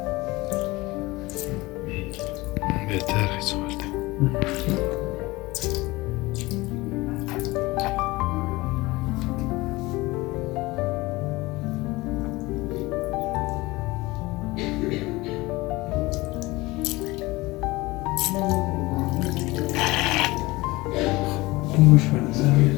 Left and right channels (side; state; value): right; quieter; 21.1 dB